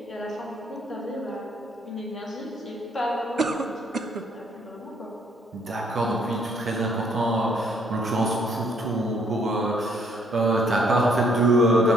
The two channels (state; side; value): normal; both; correlation 0.66